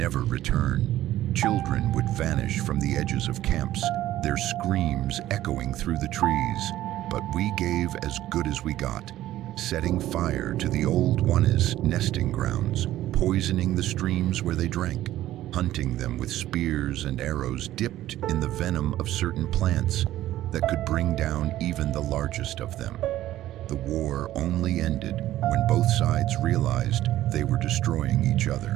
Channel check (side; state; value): left; quieter; 14.1 dB